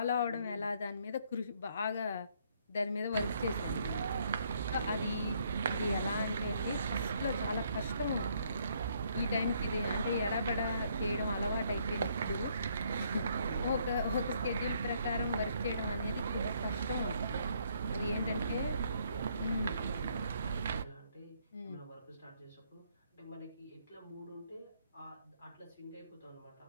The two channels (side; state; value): both; inverted; correlation -0.68